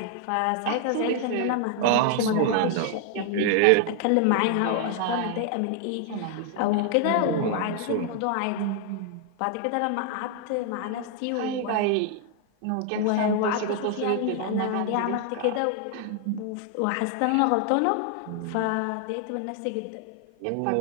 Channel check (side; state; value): both; different; correlation 0.00